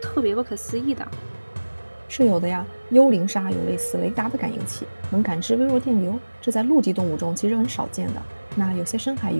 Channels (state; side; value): inverted; both; correlation -1.00